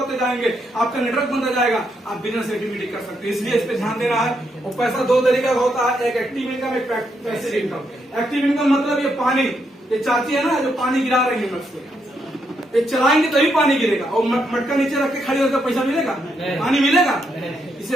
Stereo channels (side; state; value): both; normal; correlation 0.78